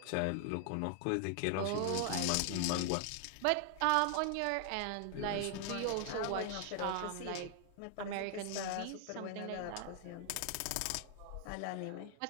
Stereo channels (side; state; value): both; different; correlation 0.00